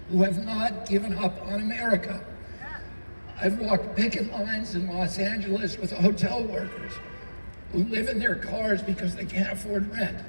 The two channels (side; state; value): both; inverted; correlation -1.00